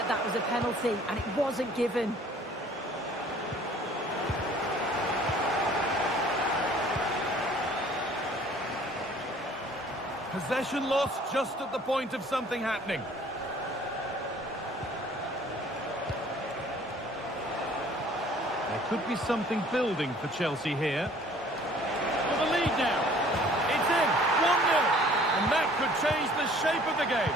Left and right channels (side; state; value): both; normal; correlation 0.54